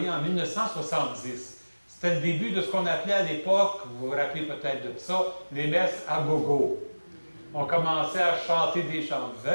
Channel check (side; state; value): both; inverted; correlation -1.00